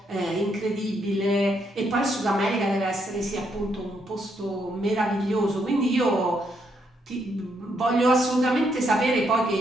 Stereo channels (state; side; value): normal; both; correlation 0.76